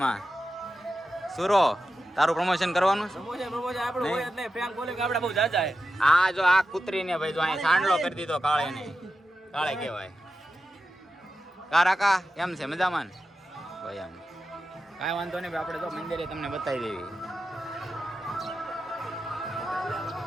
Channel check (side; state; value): both; normal; correlation 0.91